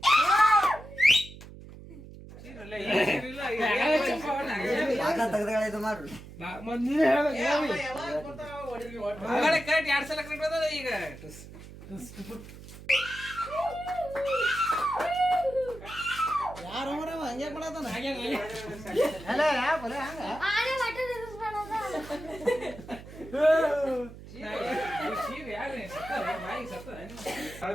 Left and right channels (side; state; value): right; noise; hum, 16 dB below the sound